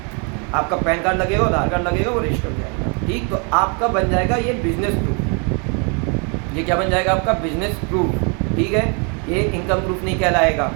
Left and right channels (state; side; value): quieter; left; 35.6 dB